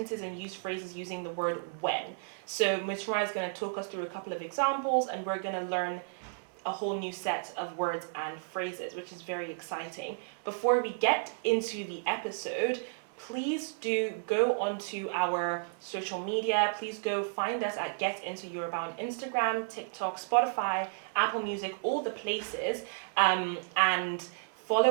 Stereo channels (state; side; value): silent; left; 56 dB below the other